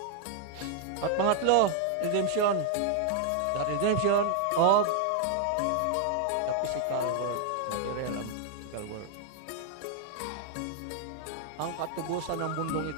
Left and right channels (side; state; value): both; different; correlation 0.00